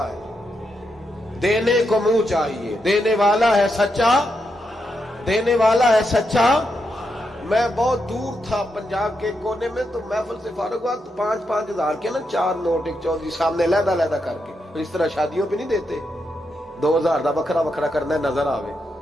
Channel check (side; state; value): both; normal; correlation 0.83